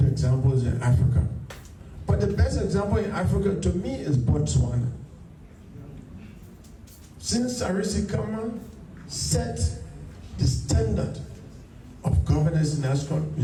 examples in Africa. But the best example in Africa to me is Botswana. Since Sarisi Kama set standard of governance in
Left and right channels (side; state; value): both; identical; correlation 1.00